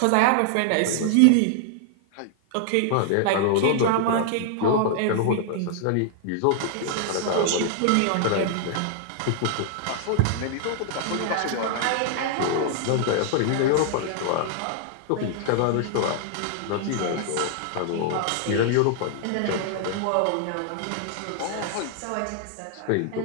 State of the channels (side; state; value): both; different; correlation 0.00